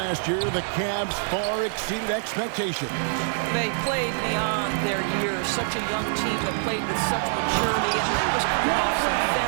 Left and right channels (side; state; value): left; silent; digital silence